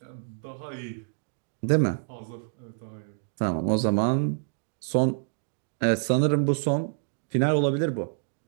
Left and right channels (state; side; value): silent; left; digital silence